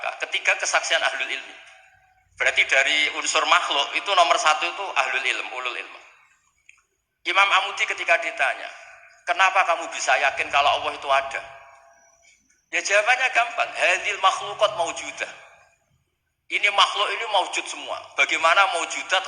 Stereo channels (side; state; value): both; identical; correlation 1.00